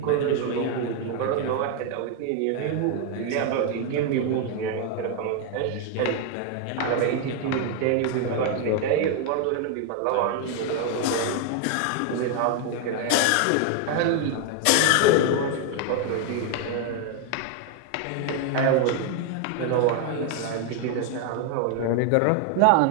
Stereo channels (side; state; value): both; different; correlation 0.00